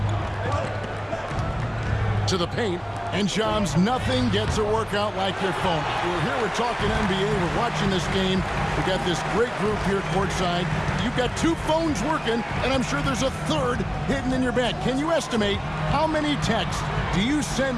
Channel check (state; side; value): identical; both; correlation 1.00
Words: To the paint. And Shams, nothing gets a workout like your phone. We're talking NBA. We're watching this game. We got this great group here courtside. You've got 2 phones working, and I'm sure there's a third hidden in your bag. Can you estimate how many texts do you send